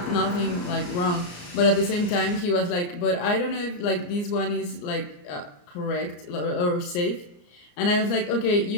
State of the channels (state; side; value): late; right; 34 ms